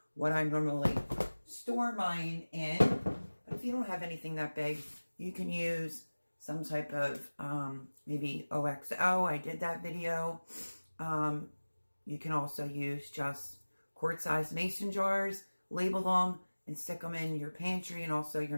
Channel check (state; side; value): inverted; both; correlation -1.00